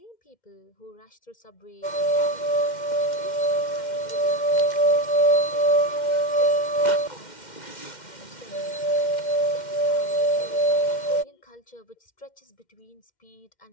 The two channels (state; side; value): late; right; 2.1 ms